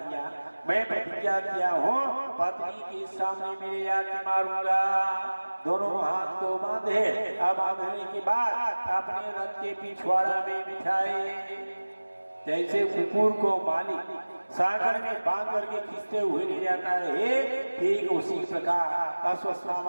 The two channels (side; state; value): both; inverted; correlation -1.00